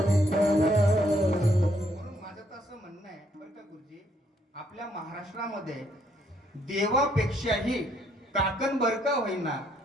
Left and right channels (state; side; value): normal; both; correlation 0.70